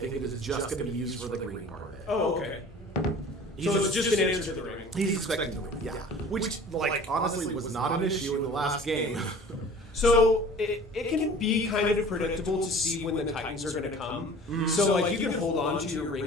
it is just going to be used for the green part of it. Oh, okay. So it's just an answer to the ring. He's expecting the ring, yeah. Which, honestly, was not an issue in the last game. So it can be kind of predictable to see when the Titans are going to come. So you can hold on to your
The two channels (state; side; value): normal; both; correlation 0.45